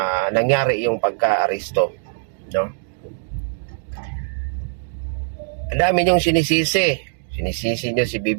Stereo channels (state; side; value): silent; left; digital silence